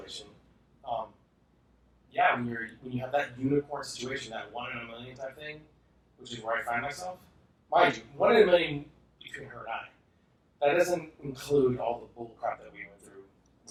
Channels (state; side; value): identical; both; correlation 1.00